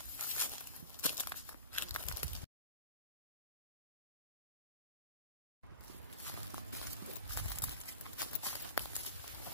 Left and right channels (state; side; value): inverted; both; correlation -0.35